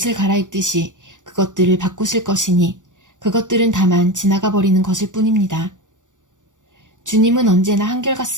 갈아입듯이 그것들을 바꾸실 것이니 그것들은 다만 지나가 버리는 것일 뿐입니다. 주님은 언제나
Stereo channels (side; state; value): left; late; 0.87 ms